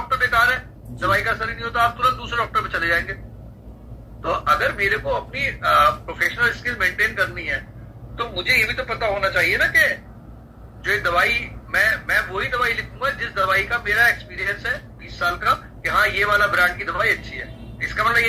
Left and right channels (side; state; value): both; identical; correlation 1.00